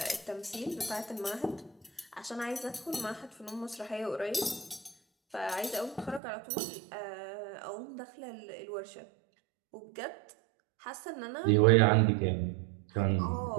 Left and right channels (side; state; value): left; drops out; at 6.2 s